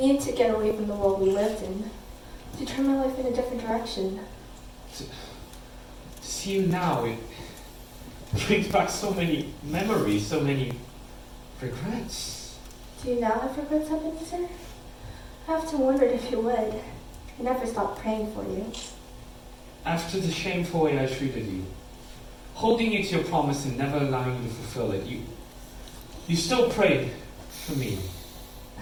needed to get away from the world we lived in, to turn my life in a different direction. To see you now, it brings back so many memories, so many regrets. Do you now have regrets, Ebenezer? I often wondered if you would. I never stopped praying for you. After the shameful way I treated you, holding you to your promise and never allowing you to fulfill it, you still prayed for me.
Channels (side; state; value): both; identical; correlation 1.00